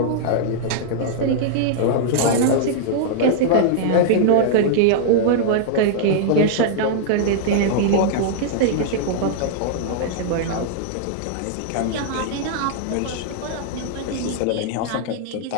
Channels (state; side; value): different; both; correlation -0.01